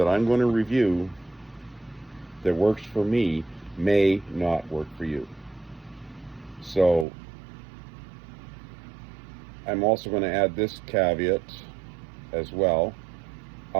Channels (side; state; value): left; drops out; at 7.1 s